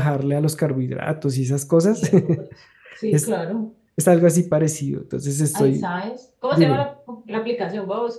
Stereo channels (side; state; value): both; identical; correlation 1.00